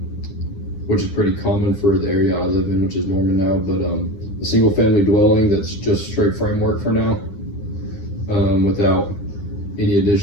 which is pretty common for the area I live in, which is Norman now, but a single family dwelling that's just straight framework for now, without any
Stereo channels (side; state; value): right; late; 9.9 ms